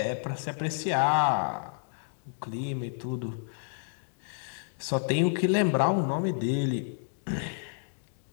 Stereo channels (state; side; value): silent; right; digital silence